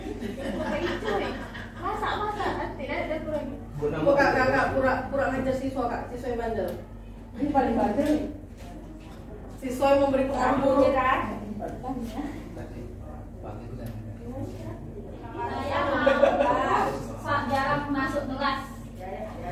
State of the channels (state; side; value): identical; both; correlation 1.00